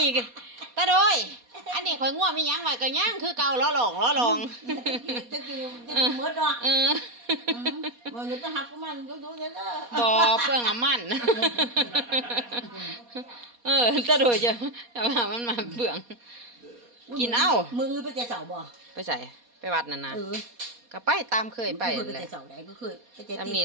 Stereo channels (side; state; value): left; late; 4.2 ms